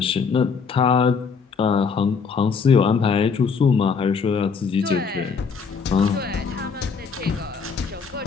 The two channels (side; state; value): right; quieter; 5.6 dB